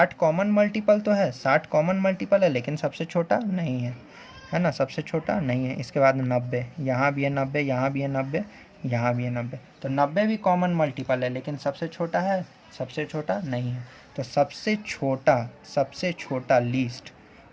कॉमन मल्टीपल तो है, 60 कॉमन मल्टीपल है, लेकिन सबसे छोटा नहीं है ना, सबसे छोटा नहीं है। इसके बाद 90, यहाँ भी है 90, यहाँ भी है 90, यहाँ भी है 90। तो 90 भी कॉमन मल्टीपल है, लेकिन सबसे छोटा है, सबसे छोटा नहीं है। तो सबसे छोटा लीस्ट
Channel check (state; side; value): identical; both; correlation 1.00